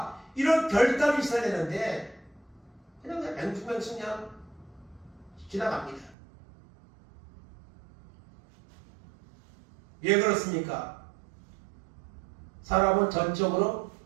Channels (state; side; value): drops out; left; at 6.2 s